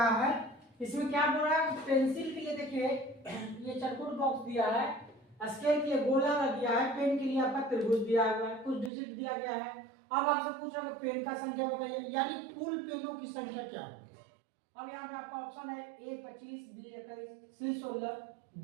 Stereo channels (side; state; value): left; drops out; at 8.9 s